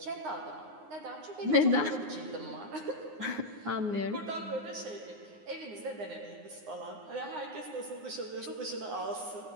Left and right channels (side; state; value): left; late; 9.6 ms